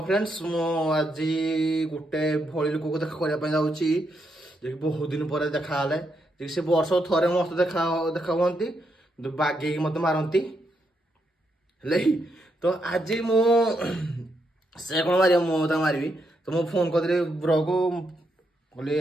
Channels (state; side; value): normal; both; correlation 0.80